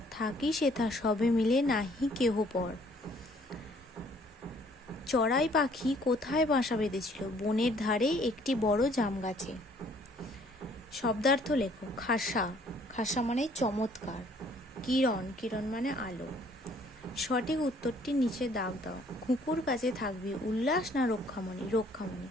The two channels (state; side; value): normal; both; correlation 0.61